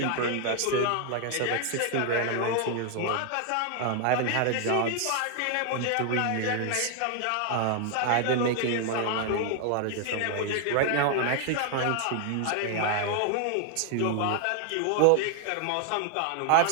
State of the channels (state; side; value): different; both; correlation 0.00